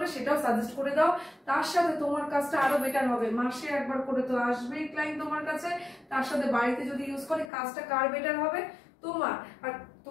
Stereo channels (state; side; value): drops out; right; at 7.5 s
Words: সেটাও সাজেস্ট করে দাও। তার সাথে তোমার কাজটা আরো বেটার হবে, মাসে একবার করে তো আসবেই ক্লায়েন্ট তোমার কাছে, তার সাথে বাড়িতে যদি ইউজ করে কাজটা কার বেটার হবে? তোমার। আর